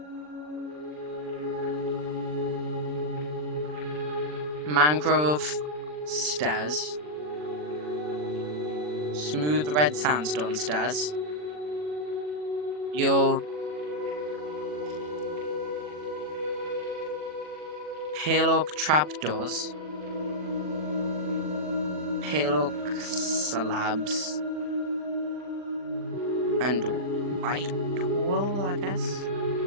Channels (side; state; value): left; late; 40 ms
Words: mangrove stairs, smooth red sandstone stairs, your pale oak trapdoors, pale oak slabs, and white wool, I guess.